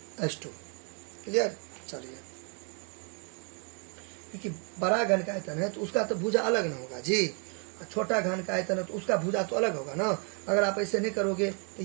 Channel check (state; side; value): quieter; left; 37.0 dB